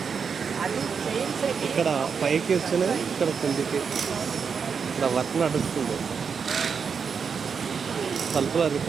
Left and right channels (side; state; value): left; quieter; 6.2 dB